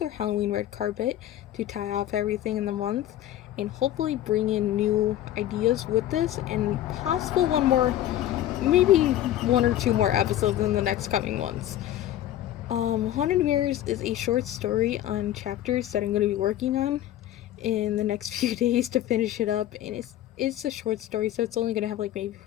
Halloween red carpet to tie off everything in the month, and hopefully bring in new ideas with this, and possible one more, maybe 1 or 2 more episodes in the next coming months. Haunted Mirrors is a short story on chapters that I'm going to be working on in the next few days to finish it up, and it's a short story, so it's only going to have maybe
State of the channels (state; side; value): quieter; right; 12.8 dB